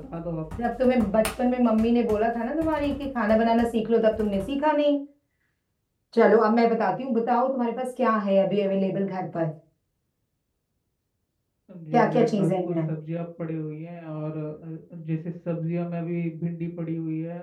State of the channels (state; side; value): identical; both; correlation 1.00